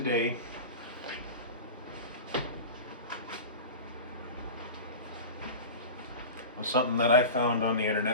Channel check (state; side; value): inverted; both; correlation -0.30